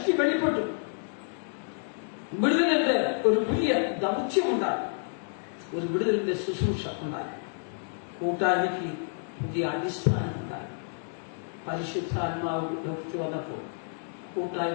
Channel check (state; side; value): silent; right; 57 dB below the other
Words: വെളിപ്പെട്ടു. വിടുതലിന്റെ ഒരു പുതിയ ദൗത്യമുണ്ടാകും, ഒരു വിടുതലിന്റെ ശുശ്രൂഷ ഉണ്ടാകും. കൂട്ടായ്മയ്ക്ക് പുതിയ അടിസ്ഥാനം ഉണ്ടാകും. പരിശുദ്ധാത്മാവ് ലോകത്തിൽ വന്നപ്പോൾ